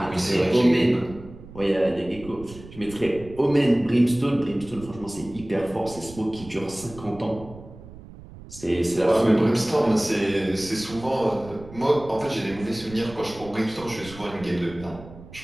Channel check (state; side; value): noise; right; rumble, 17 dB below the sound